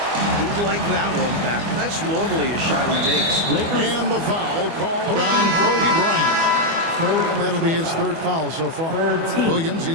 like that one back. That's normally a shot he makes. And the foul called on Kobe Bryant. That'll be his 3rd foul so far. Williams,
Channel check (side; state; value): left; late; 24 ms